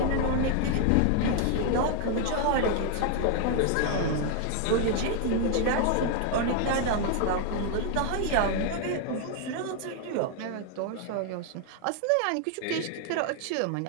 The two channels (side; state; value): both; different; correlation 0.00